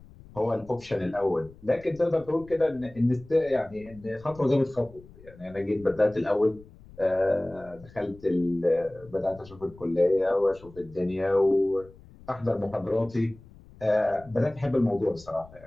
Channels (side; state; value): left; noise; rumble, 22 dB below the sound